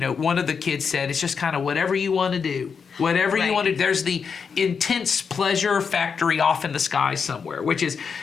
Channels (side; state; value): right; quieter; 6.0 dB